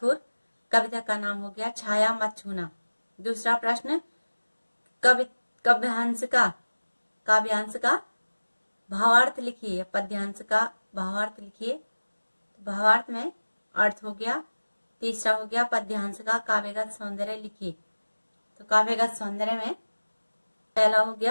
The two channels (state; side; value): inverted; both; correlation -1.00